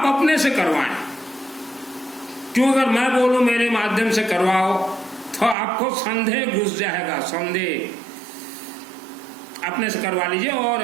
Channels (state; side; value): drops out; left; at 5.6 s